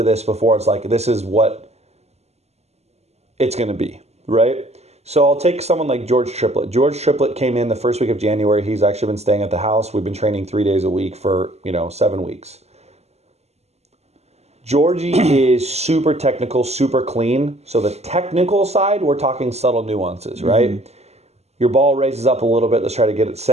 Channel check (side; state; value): left; late; 0.31 ms